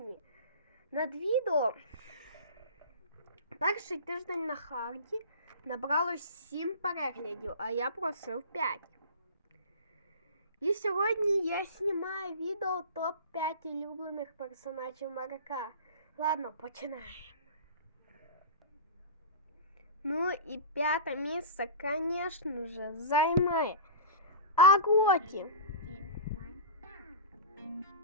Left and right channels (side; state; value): both; inverted; correlation -0.33